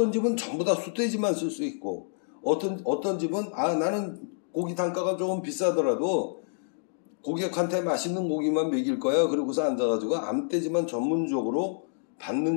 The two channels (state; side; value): silent; right; digital silence